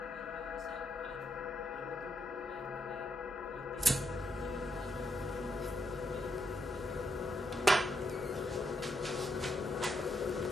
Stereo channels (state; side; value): normal; both; correlation 0.79